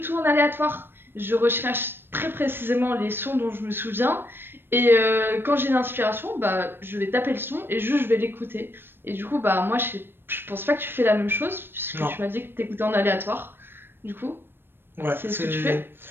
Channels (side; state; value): left; late; 0.10 ms